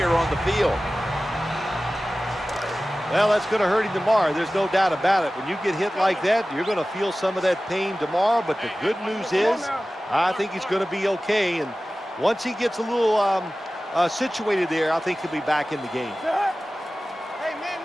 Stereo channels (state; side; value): normal; both; correlation 0.96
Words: on the field. Well, that's going to hurt him tomorrow. There's no doubt about it. When you get hit like that, you're going to feel some of that pain tomorrow. But the good news is, I think he's going to be okay. And once he gets a little situated there, I think he'll be back in the game. Hey, man.